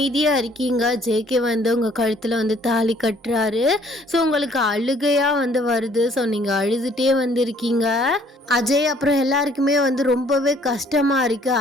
இருக்கீங்க. ஜேகே வந்து உங்கள் கழுத்தில் வந்து தாலி கட்டுறாரு. ஸோ உங்களுக்கு அழுகையாக வந்து வருது. ஸோ நீங்கள் அழுதுகிட்டே வந்து இருக்கீங்க. அஜய் அப்புறம் எல்லாருக்குமே வந்து ரொம்பவே கஷ்டமாக இருக்குது.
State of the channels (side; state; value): both; normal; correlation 0.60